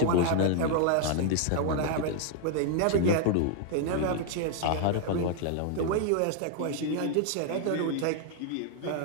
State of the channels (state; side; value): different; both; correlation 0.00